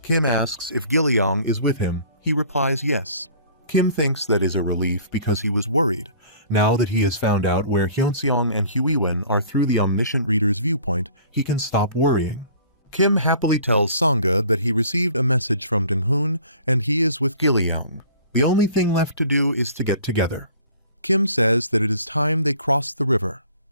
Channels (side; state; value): both; inverted; correlation -0.50